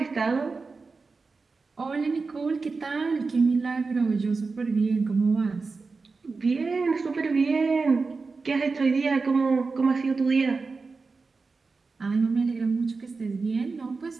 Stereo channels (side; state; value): left; quieter; 4.2 dB